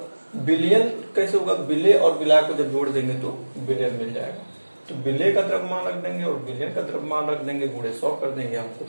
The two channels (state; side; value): inverted; both; correlation -1.00